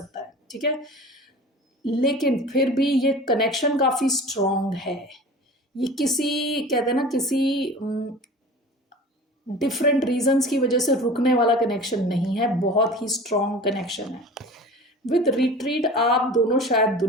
है, ठीक है, लेकिन फिर भी ये कनेक्शन काफ़ी स्ट्रॉन्ग है। ये किसी, कहते हैं ना, किसी डिफरेंट रीजंस की वजह से रुकने वाला कनेक्शन नहीं है, बहुत ही स्ट्रॉन्ग कनेक्शन है। विद रिट्रीट, आप दोनों शायद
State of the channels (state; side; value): normal; both; correlation 0.38